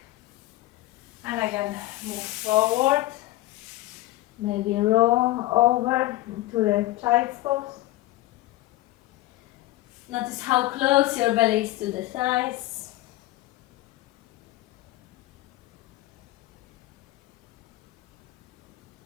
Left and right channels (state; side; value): quieter; right; 17.3 dB